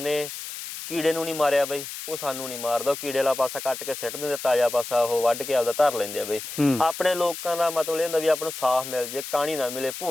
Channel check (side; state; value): left; noise; hiss, 9 dB below the sound